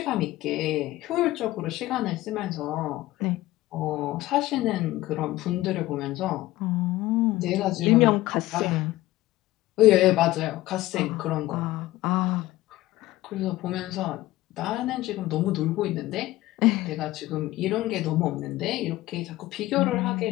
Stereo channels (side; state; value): right; quieter; 17.0 dB